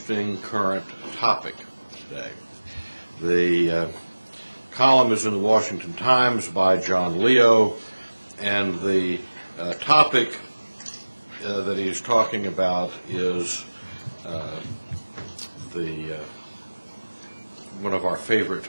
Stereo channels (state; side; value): inverted; both; correlation -1.00